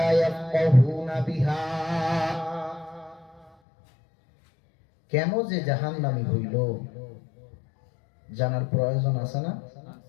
ইয়াফকাহুনা বিহা। কেন যে জাহান্নামী হইল জানার প্রয়োজন আছে না?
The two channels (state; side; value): drops out; right; at 3.5 s